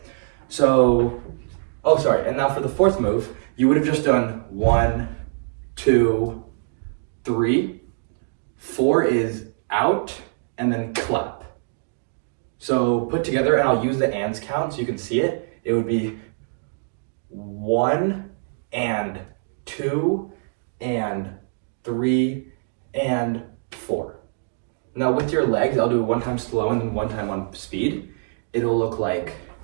So, oh, sorry. And now for the 4th move, you would have just done 1, 2, 3. 4 is out and then clap. So put together, and I'll use the ands count so you can see it. It would be 1 and 2 and 3 and 4. Now with your legs, I'll do it 1 time slow and then 1 time on speed. It'll look like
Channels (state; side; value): silent; left; digital silence